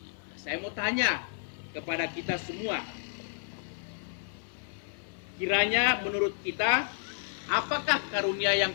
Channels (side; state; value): right; silent; 57 dB below the other